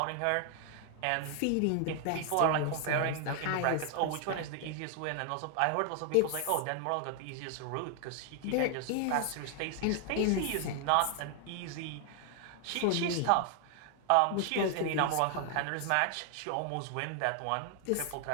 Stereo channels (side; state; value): both; different; correlation 0.00